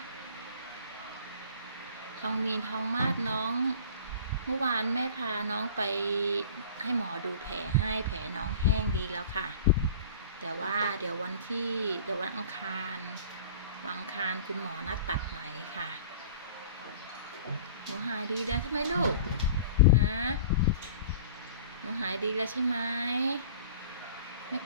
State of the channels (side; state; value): both; inverted; correlation -0.42